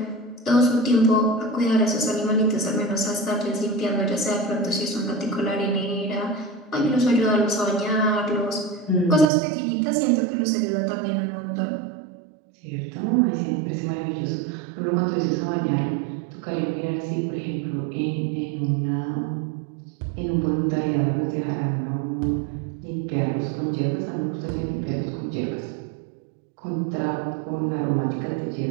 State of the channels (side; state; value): left; drops out; at 9.3 s